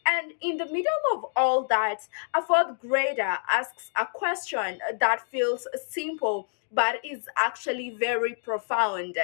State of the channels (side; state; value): right; silent; digital silence